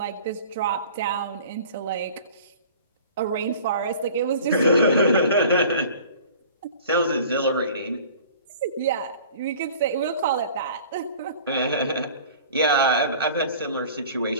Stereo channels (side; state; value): both; inverted; correlation -0.45